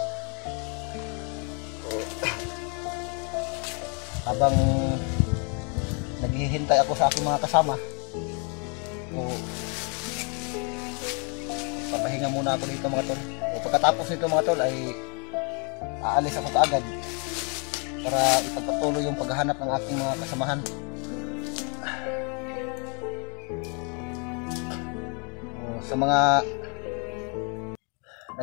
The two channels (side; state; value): right; quieter; 35.3 dB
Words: So, habang naghihintay ako sa aking mga kasama, so, papahinga muna ako dito mga tol. O pagkatapos nito mga tol ay aalis ako kaagad para ipagpatuloy yung paghahanap ng aking mga kasamahan. O, sa mga